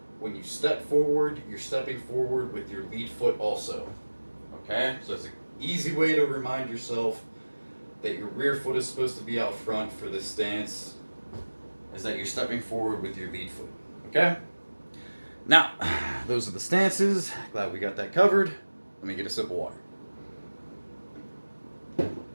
when you step forward, you're stepping forward with your lead foot also. Okay? So it's an easy way to remind yourself that your rear foot is supposed to be out front for this stance, is that you're stepping forward with your lead foot. Okay? Now, those are the stances. Glad we got that covered. Let me get a sip of water.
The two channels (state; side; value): inverted; both; correlation -1.00